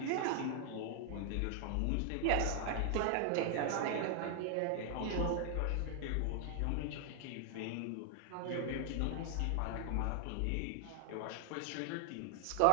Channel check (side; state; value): both; different; correlation 0.00